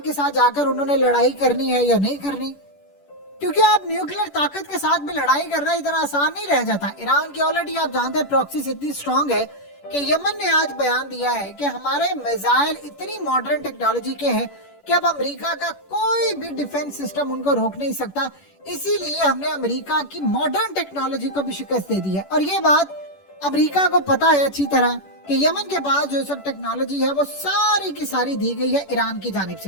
साथ जाकर उन्होंने लड़ाई करनी है या नहीं करनी, क्योंकि आप न्यूक्लियर ताकत के साथ भी लड़ाई करना इतना आसान नहीं रह जाता। ईरान की ऑलरेडी आप जानते हैं प्रॉक्सीज इतनी स्ट्रांग है कि यमन ने आज बयान दिया है कि हमारे मिसाइल इतनी मॉडर्न टेक्नोलॉजी के हैं कि अब अमेरिका का कोई भी डिफेंस सिस्टम उनको रोक नहीं सकता। इसीलिए हमने अमेरिका की मॉडर्न टेक्नोलॉजी को भी शिकस्त दे दी है। और ये बात अमेरिका को पता है अच्छी तरह कि यमन के पास जो सब टेक्नोलॉजी है वो सारी की सारी दी गई है ईरान की जानिब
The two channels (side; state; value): right; late; 10 ms